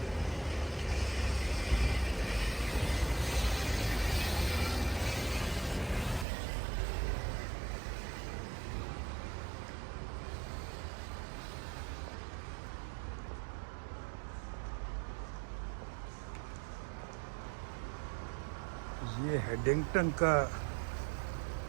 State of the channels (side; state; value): left; drops out; at 6.2 s